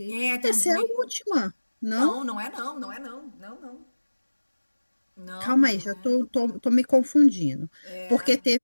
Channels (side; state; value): both; inverted; correlation -1.00